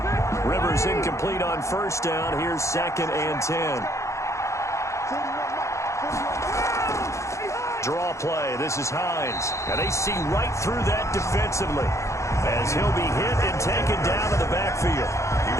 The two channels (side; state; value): right; late; 0.14 ms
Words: Rivers incomplete on 1st down. Here's 2nd and 10. Draw play. This is Hines. And they see right through that defensively as he'll be hit and taken down to the backfield.